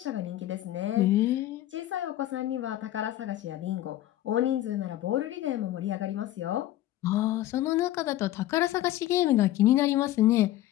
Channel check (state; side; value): quieter; right; 14.2 dB